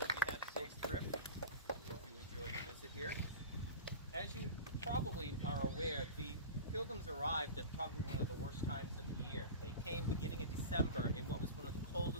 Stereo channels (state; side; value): inverted; both; correlation -0.30